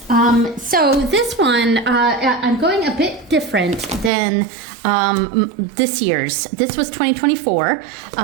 So this one, I'm going a bit different than this year's. This was 2024.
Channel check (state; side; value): drops out; left; at 4.1 s